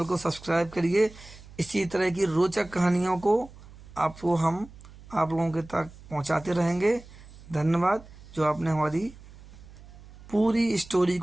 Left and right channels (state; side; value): noise; right; hum, 20 dB below the sound